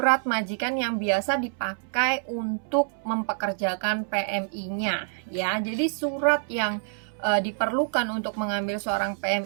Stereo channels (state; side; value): silent; left; 60 dB below the other